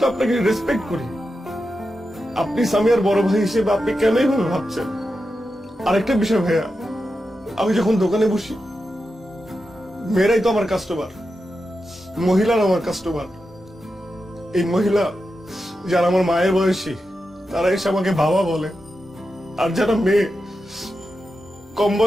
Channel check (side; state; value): both; normal; correlation 0.89